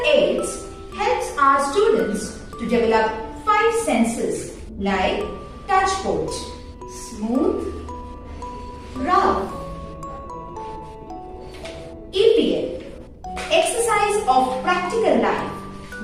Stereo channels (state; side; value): identical; both; correlation 1.00